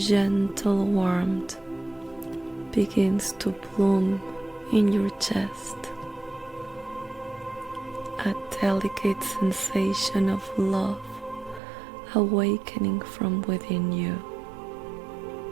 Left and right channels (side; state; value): left; drops out; at 11.6 s